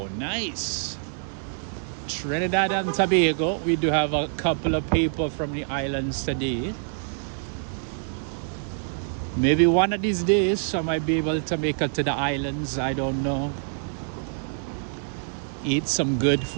Nice. Trinidad and Tobago. We do have a couple of people from the islands today. Maybe one of these days I might be able to make it to the islands. I don't know. Eat some good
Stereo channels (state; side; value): silent; left; digital silence